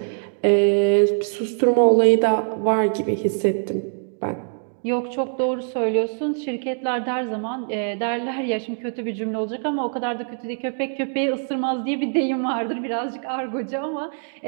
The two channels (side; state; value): left; silent; 63 dB below the other